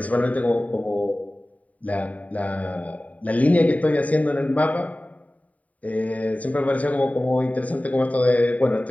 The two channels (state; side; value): late; right; 0.070 ms